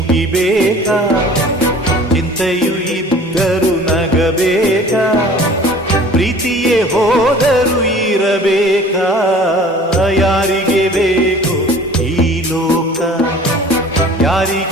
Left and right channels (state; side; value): normal; both; correlation 0.47